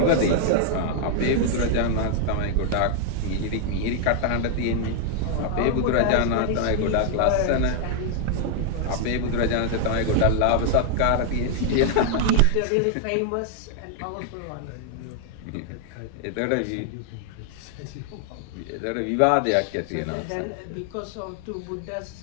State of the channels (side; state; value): both; different; correlation 0.00